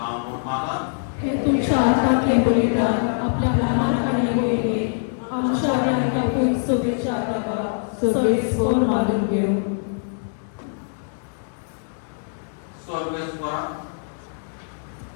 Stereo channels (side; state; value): right; silent; digital silence